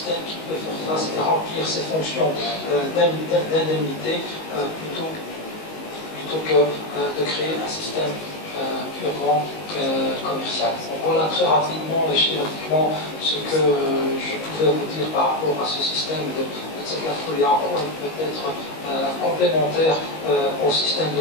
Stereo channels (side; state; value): right; late; 19 ms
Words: qui peut faire face et remplir ses fonctions d'indemnité plutôt que de créer un système purement commercial. Donc voilà très rapidement et schématiquement ce que je pouvais vous dire par rapport à ce système de Tzakaful et en quoi il peut être complémentaire au système